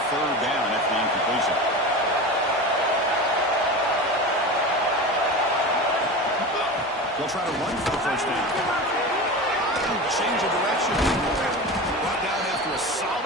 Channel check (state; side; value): normal; both; correlation 0.28